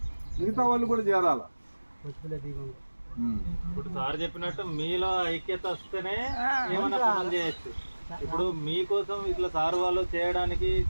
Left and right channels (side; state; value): both; inverted; correlation -1.00